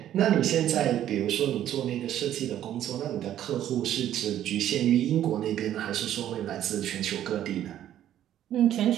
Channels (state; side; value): quieter; left; 11.6 dB